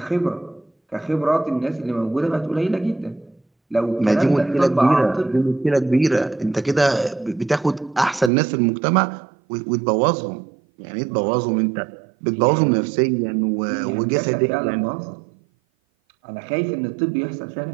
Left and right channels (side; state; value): left; drops out; at 8.3 s